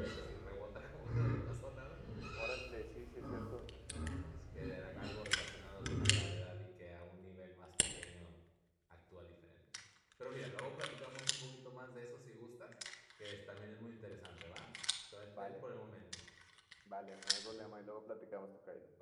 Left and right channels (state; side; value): identical; both; correlation 1.00